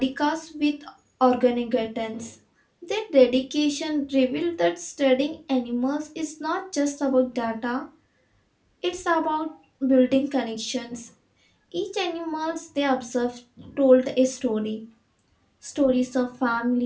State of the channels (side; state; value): both; identical; correlation 1.00